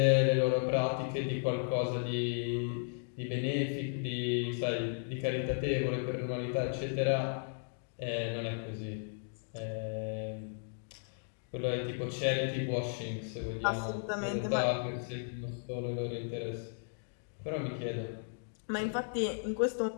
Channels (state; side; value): silent; right; digital silence